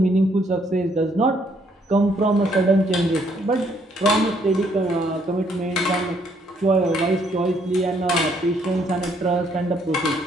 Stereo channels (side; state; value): both; normal; correlation 0.68